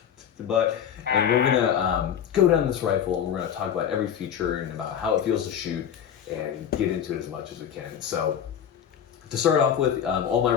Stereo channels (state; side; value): quieter; right; 8.9 dB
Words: and we're going to go down this rifle, and we're going to talk about every feature and about how it feels to shoot and get into it as much as we can. So to start off with, all my